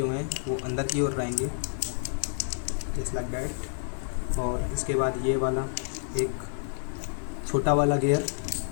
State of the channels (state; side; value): silent; right; 58 dB below the other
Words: हैं वो अंदर की ओर रहेंगे, जस्ट लाइक दैट। और इसके बाद ये वाला एक छोटा वाला गियर,